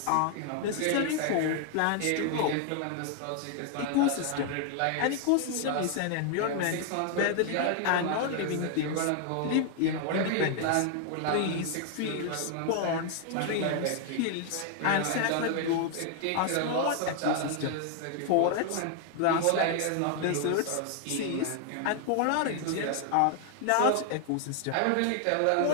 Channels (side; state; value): both; different; correlation 0.00